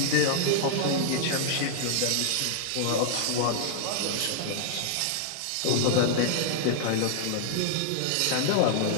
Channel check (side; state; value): both; different; correlation -0.01